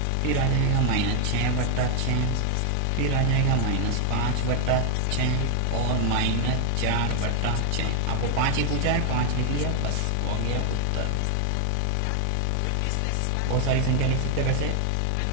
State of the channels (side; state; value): both; different; correlation 0.00